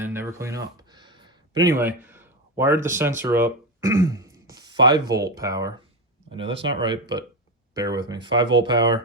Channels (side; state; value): both; normal; correlation 0.14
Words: never clean up. But anyway, wired the sensor up, 5-volt power. I know that's not right, but bear with me. 5-volt